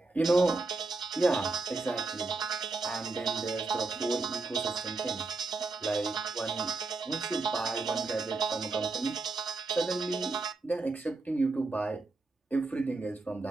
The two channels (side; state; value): left; quieter; 3.6 dB